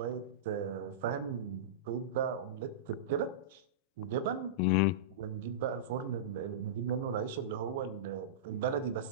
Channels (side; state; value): both; normal; correlation -0.16